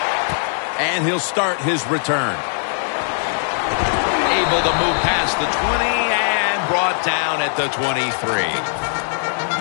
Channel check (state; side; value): silent; right; digital silence